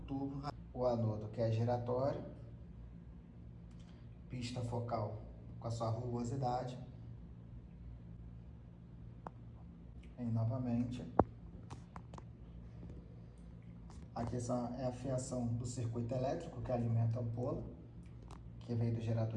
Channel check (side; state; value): both; identical; correlation 1.00